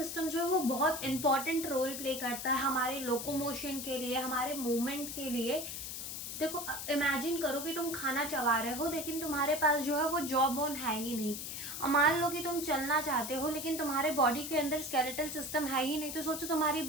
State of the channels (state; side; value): noise; left; hiss, 6 dB below the sound